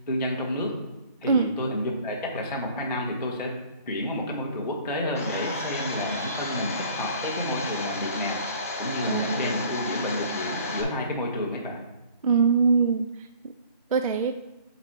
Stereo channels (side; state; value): both; inverted; correlation -0.51